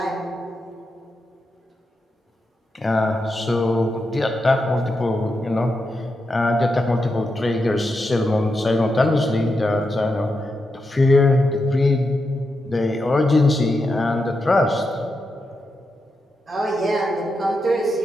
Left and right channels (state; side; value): normal; both; correlation 0.86